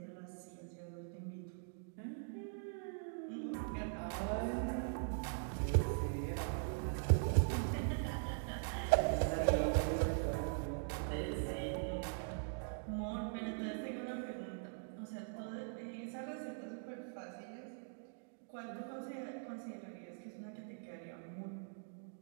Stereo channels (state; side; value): silent; left; digital silence